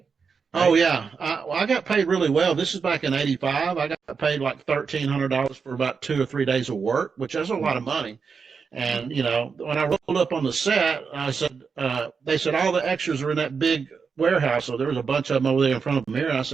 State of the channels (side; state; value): left; quieter; 5.6 dB